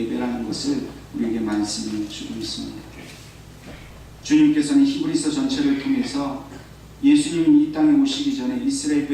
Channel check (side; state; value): both; identical; correlation 1.00